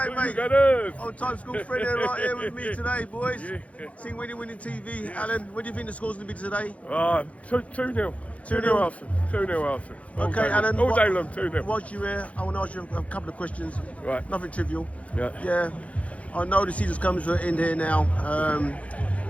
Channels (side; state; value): right; late; 0.065 ms